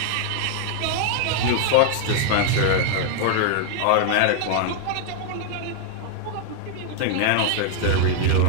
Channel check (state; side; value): different; both; correlation 0.00